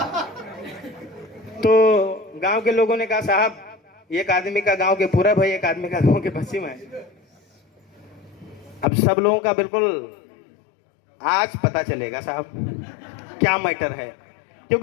तो गांव के लोगों ने कहा साहब एक आदमी का गांव के पूरब है, एक आदमी का गांव के पश्चिम है। अब सब लोगों का बिल्कुल आज पता चलेगा साहब क्या मैटर है,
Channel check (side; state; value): right; drops out; at 8.8 s